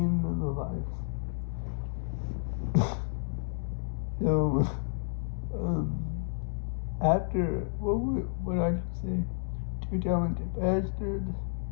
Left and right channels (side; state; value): right; silent; digital silence